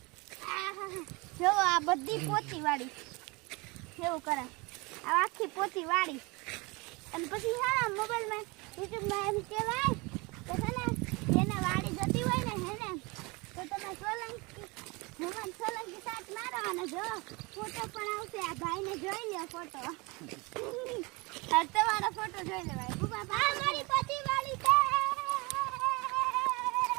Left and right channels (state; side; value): quieter; left; 26.4 dB